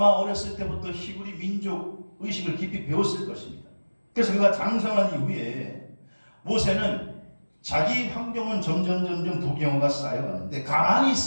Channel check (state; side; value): inverted; both; correlation -1.00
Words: 어렸을 때부터 히브리 민족 의식을 깊이 배웠을 것입니다. 그래서 그가 장성한 이후에 모세는 자기 환경은 점점 부경화가 쌓여가는데 가만히